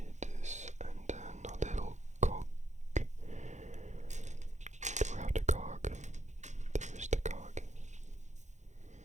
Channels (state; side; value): late; left; 0.34 ms